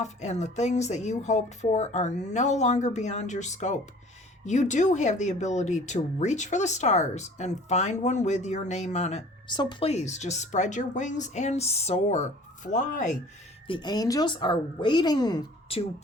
and the things that you hoped for are no longer beyond your scope. You do have the ability to reach for the stars and find one with your name on it. So please just spread your wings and soar, fly. The angels are waiting to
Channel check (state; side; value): normal; both; correlation 0.49